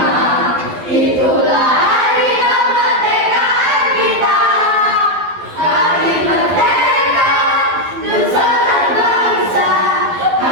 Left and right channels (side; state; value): left; late; 12 ms